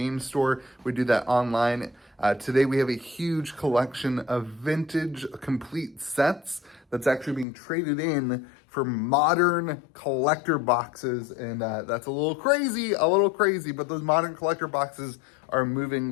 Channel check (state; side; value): drops out; right; at 7.5 s